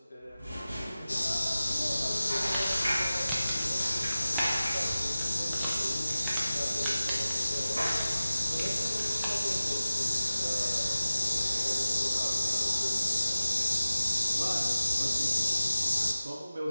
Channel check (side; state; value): both; inverted; correlation -0.96